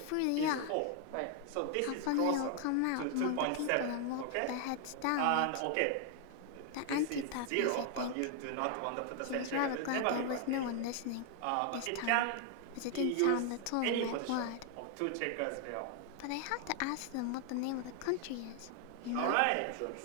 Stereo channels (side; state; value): both; different; correlation 0.00